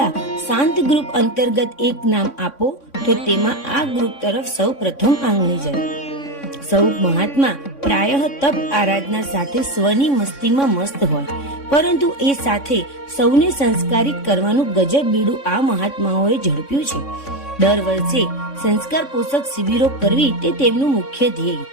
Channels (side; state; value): right; late; 3.6 ms